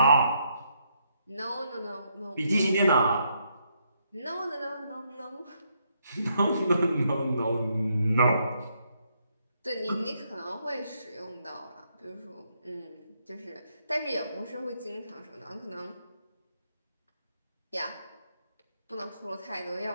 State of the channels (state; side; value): inverted; both; correlation -0.75